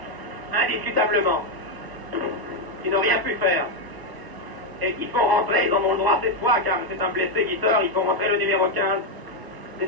indiscutablement, qui n'ont rien pu faire et qui font rentrer, ils en ont le droit cette fois car c'est un blessé qui sort, ils font rentrer le numéro 15,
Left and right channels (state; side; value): late; left; 1.0 ms